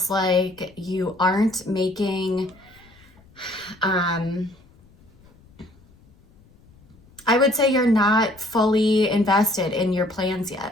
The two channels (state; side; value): noise; left; rumble, 28 dB below the sound